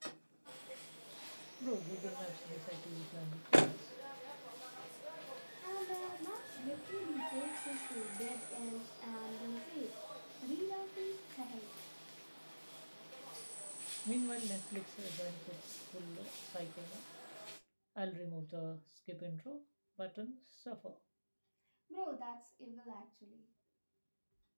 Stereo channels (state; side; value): inverted; both; correlation -1.00